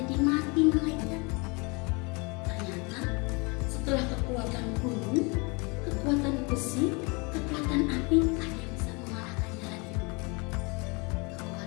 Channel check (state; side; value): quieter; right; 29.6 dB